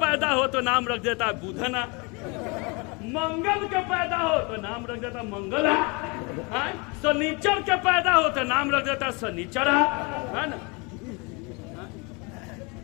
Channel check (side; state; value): right; quieter; 29.8 dB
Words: ہو تو نام رکھ دیتا ہے بدھنا, منگل کے پیدا ہو تو نام رکھ دیتا منگلا, سنیچر کے پیدا ہو تو نام رکھ دیتا سنیچرا, ہے نا.